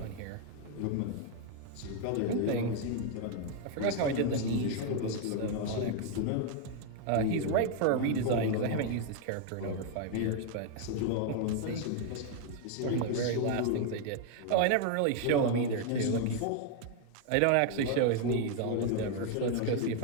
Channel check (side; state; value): both; different; correlation 0.00